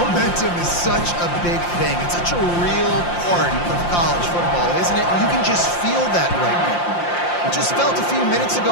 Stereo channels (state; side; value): late; right; 5.7 ms